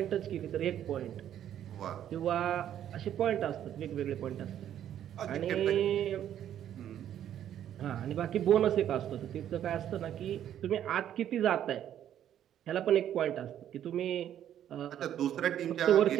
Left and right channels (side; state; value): left; quieter; 10.6 dB